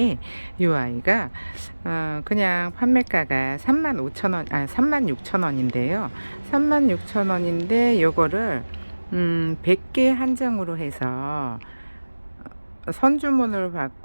요 아이가 그냥 판매가가 35,000원, 36,000원인데요. 36,000원인데 요거를 100개 한정으로 해서 선주문을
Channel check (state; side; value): inverted; both; correlation -1.00